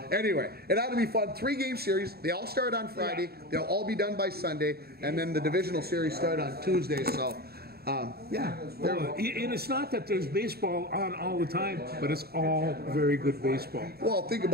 Anyway, it ought to be fun. 3-game series. They all start on Friday. They'll all be done by Sunday, and then the divisional series start on Tuesday. So, yeah. And it's not that there's baseball on all the time, but it's all very good baseball. Well, think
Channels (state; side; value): late; left; 0.46 ms